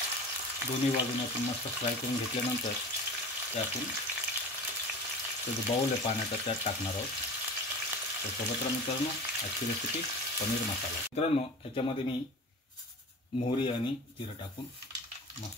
दोन्ही बाजूने आपण मस्त फ्राय करून घेतल्यानंतर ते आपण जो बाउल आहे पाण्याचा त्यात टाकणार आहोत। तर सोबत मित्रांनो, आजची रेसिपी पनीर मसाला। मित्रांनो, ह्याच्यामध्ये मी मोहरी आणि जिरं टाकून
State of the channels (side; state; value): both; normal; correlation 0.35